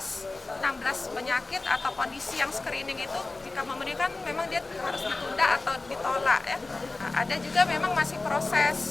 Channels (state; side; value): quieter; right; 3.3 dB